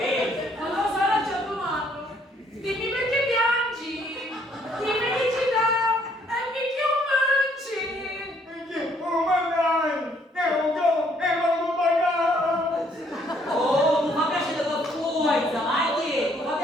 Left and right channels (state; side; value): normal; both; correlation 0.66